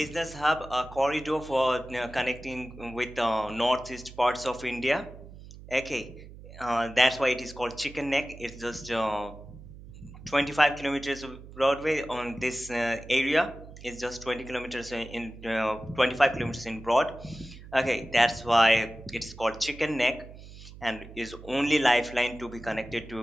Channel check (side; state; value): right; noise; hum, 16 dB below the sound